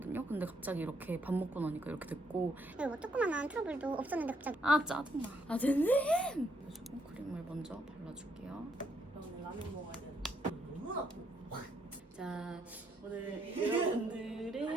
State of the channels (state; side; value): normal; both; correlation 0.74